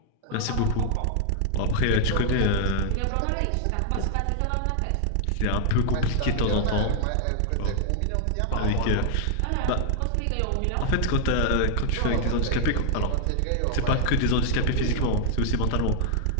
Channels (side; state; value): both; different; correlation 0.00